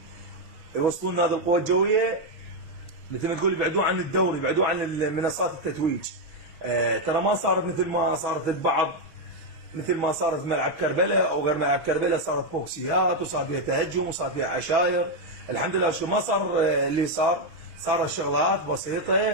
يوصلون هذه القوى الجويه مثل ما تقول يبعدون عن الدوري، يبعدون عن منصات التتويج. ترى ما صارت مثل ما صارت البعض، مثل ما صارت في ملعب كربلاء او غير ملعب كربلاء، صارت بوكسيات وصار فيها تهجم وصار فيها عشاير. الحمد لله شو ما صار اللي صار شغلات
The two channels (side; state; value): left; late; 6.1 ms